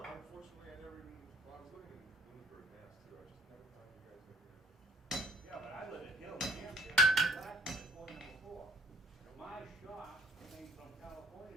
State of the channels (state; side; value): normal; both; correlation 0.57